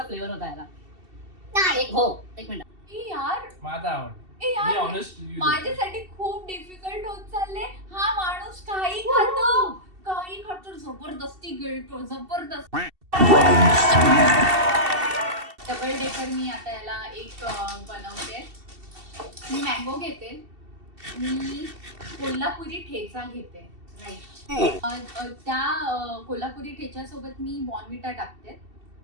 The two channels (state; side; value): late; left; 2.7 ms